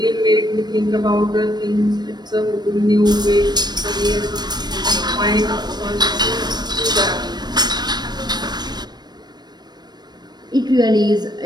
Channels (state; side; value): late; left; 0.20 ms